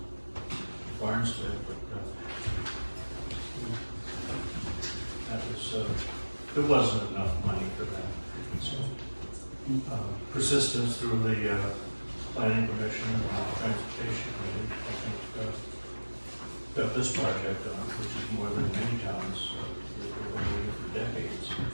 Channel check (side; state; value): both; inverted; correlation -1.00